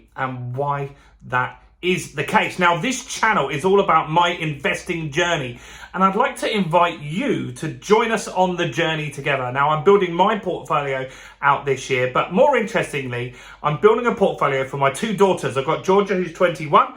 and why that is the case. Now this channel is all about my investing journey and I'd like to invite you to join us on the journey together. Now I'm building my portfolio out this year, but more interestingly, I'm building a portfolio for my two daughters. I've got Georgia, who's 21.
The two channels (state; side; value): identical; both; correlation 1.00